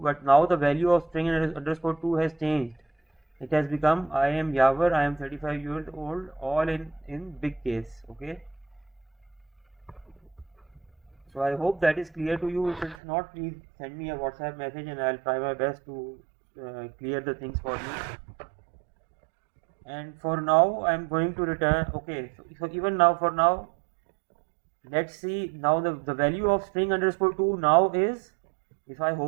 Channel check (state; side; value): drops out; left; at 13.0 s